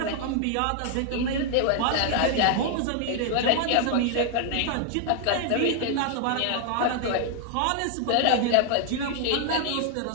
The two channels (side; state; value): both; different; correlation 0.00